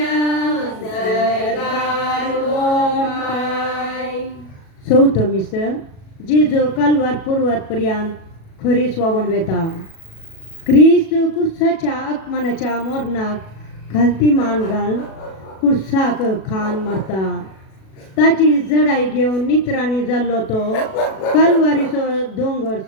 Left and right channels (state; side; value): late; right; 37 ms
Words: सरकार ओमाय. चौथं मिसळ जेजू कालवार पूर्वात पर्यंत खरी स्वावन वेता. क्रिस्त कुर्साच्या आगमनाच्या मोरणाक घालती मान घाल कुर्साक खान मरता. ताची जडाई घेवन नित्रांनी जाल्लो तो कालवारीचो दोंगर